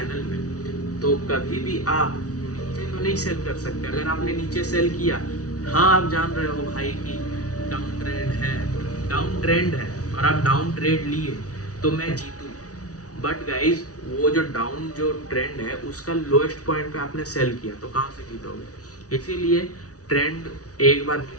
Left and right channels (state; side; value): late; right; 0.67 ms